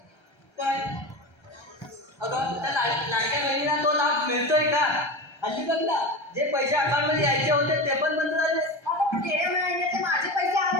पण अगं त्या लाडक्या बहिणीला तो लाभ मिळतोय का हल्ली बघ ना जे पैसे अकाउंट मध्ये यायचे होते ते पण बंद झाले माझे पैसे आले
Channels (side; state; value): right; late; 1.3 ms